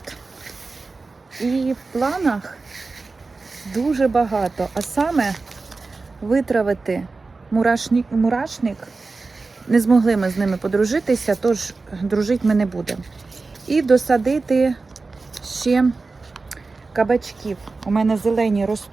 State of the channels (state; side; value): quieter; left; 3.9 dB